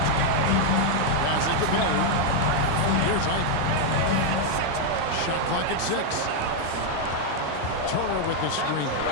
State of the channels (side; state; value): both; different; correlation 0.00